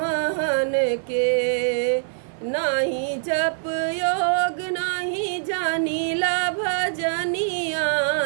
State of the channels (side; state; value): left; silent; 63 dB below the other